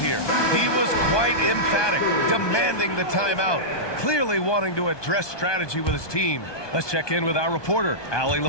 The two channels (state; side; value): late; right; 1.2 ms